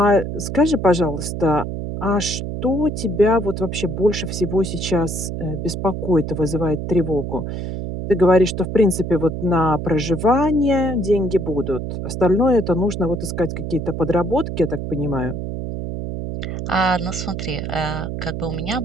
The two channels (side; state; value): right; noise; hum, 5 dB below the sound